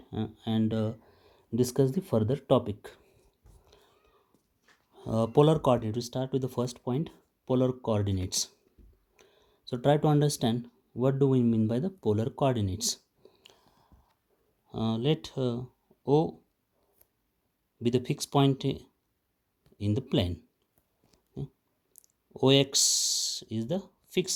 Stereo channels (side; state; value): both; identical; correlation 1.00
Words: and discuss the further topic. Polar coordinate, we start with the first point, polar coordinates. So try to understand what do we mean by the polar coordinates. Let O be the fixed point in the plane. OX is the